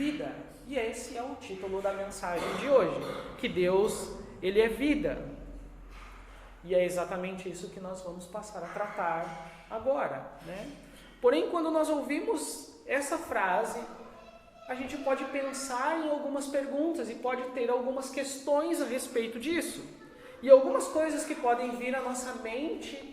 E esse é o título da mensagem de hoje, que Deus, ele é vida. E é exatamente isso que nós vamos passar a tratar agora, né? Porém, quando nós ouvimos essa frase, a gente pode pensar em algumas perguntas e pode ter algumas questões a respeito disso. E algumas coisas que podem vir à nossa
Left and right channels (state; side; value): identical; both; correlation 1.00